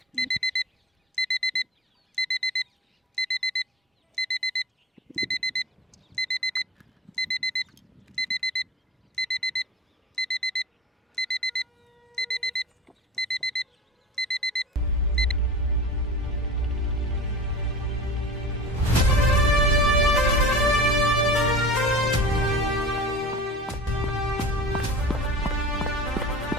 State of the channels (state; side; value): normal; both; correlation 0.36